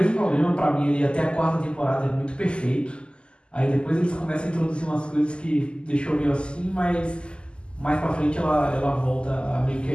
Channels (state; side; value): late; right; 0.050 ms